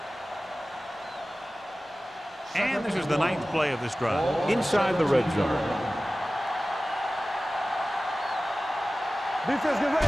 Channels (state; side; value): normal; both; correlation 0.96